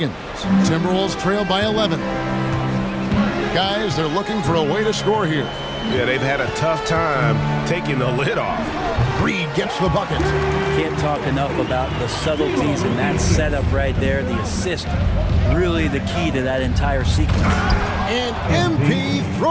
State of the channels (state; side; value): identical; both; correlation 1.00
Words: Timberwolves trail by 11. Guys, they're looking for a way to score here. Yeah, they've had a tough time taking the lid off. Reed gets the bucket. Can't talk enough about the subtleties in that setup right there. The assist, really the key to that entire sequence. And MP